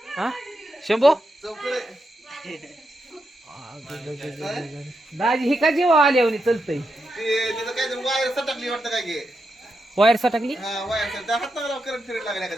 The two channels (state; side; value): normal; both; correlation 0.85